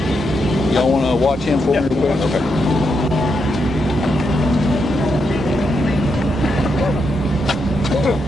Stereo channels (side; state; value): both; normal; correlation 0.82